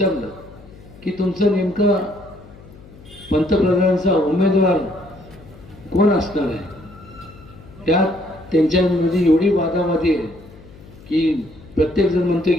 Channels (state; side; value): noise; left; hum, 21 dB below the sound